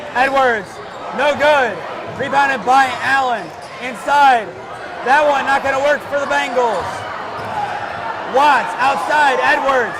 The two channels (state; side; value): identical; both; correlation 1.00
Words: Edwards, no good. Rebounded by Allen. Inside. That one not going to work for the Bengals. Watts outside. Edwards.